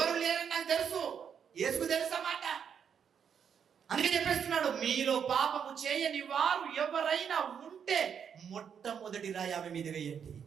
లేరని నాకు తెలుసు, యేసుకు తెలుసా మాట. అందుకే చెప్పేస్తున్నాడు, మీలో పాపము చేయని వారు ఎవరైనా ఉంటే మొట్టమొదటి రాయి ఆమె మీద వేయండి.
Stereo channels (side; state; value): left; quieter; 7.6 dB